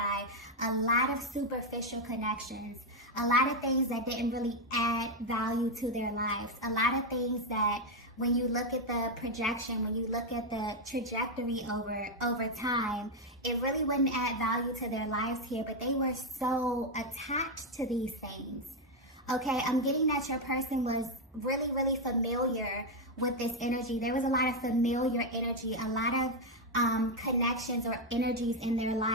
a lot of superficial connections. A lot of things that didn't really add value to their lives. A lot of things that when you look at the projection, when you look at the trajectory over time, it really wouldn't add value to their lives here, but they were so attached to these things. Okay, I'm getting that your person was really, really familiar with this energy. There was a lot of familiar energy, a lot of connections or energies in their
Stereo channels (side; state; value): both; normal; correlation 0.04